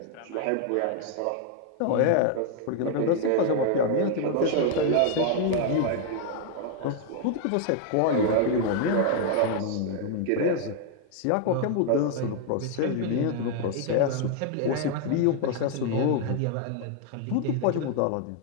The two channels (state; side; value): different; both; correlation 0.00